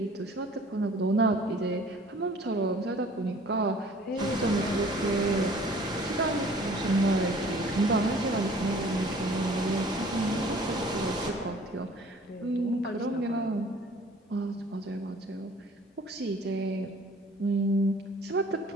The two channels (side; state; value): both; normal; correlation 0.51